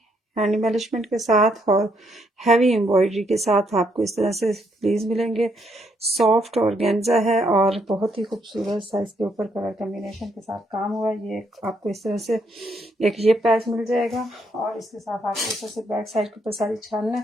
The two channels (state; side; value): normal; both; correlation 0.74